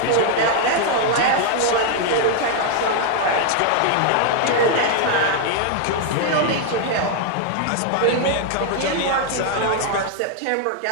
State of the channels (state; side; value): different; both; correlation 0.00